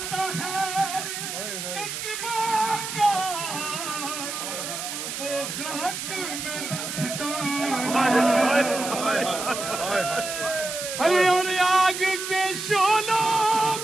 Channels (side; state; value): right; noise; hiss, 6 dB below the sound